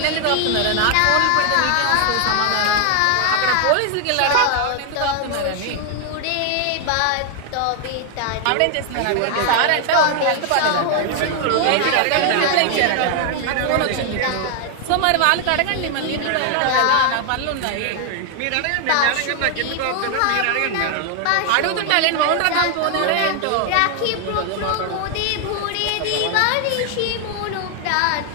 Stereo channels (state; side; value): different; both; correlation 0.00